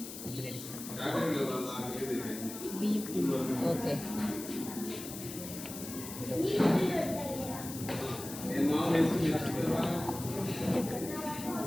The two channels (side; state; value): left; noise; hiss, 10 dB below the sound